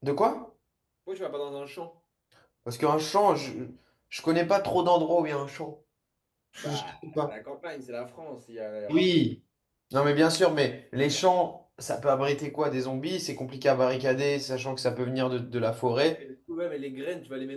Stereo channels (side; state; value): both; identical; correlation 1.00